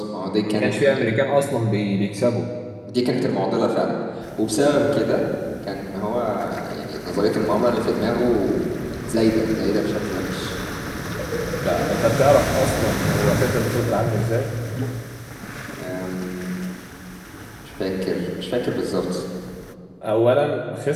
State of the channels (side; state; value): both; identical; correlation 1.00